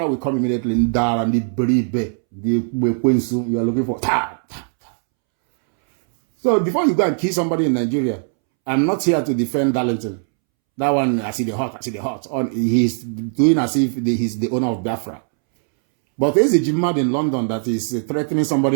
will come immediately. You are looking for. So before you go and kill somebody in Nigeria, I'm not here to defend Darlington. That one, I see the hot. He's doing as if he's the owner of Biafra. But there's a Jimad in London that is threatening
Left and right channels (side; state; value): left; silent; 66 dB below the other